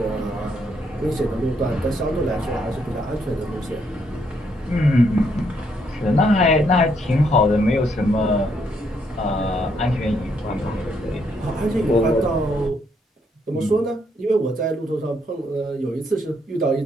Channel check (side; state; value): both; normal; correlation 0.73